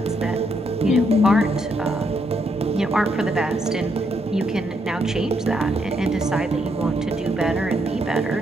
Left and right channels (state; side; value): normal; both; correlation 0.76